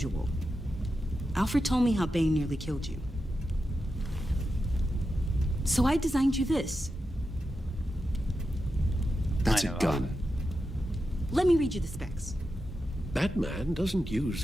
Alfred told me how Bane nearly killed you. So I designed you this. That's a gun. Let me read you the specs. Batman doesn't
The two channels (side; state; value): both; normal; correlation 0.89